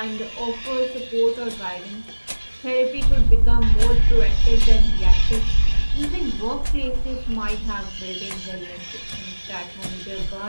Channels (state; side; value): inverted; both; correlation -1.00